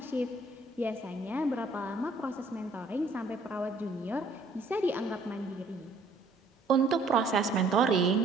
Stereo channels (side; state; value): left; quieter; 3.2 dB